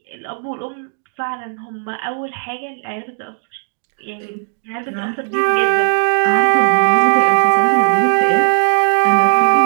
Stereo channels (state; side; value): silent; left; digital silence